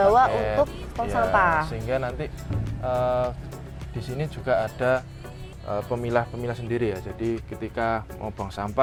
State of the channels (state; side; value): identical; both; correlation 1.00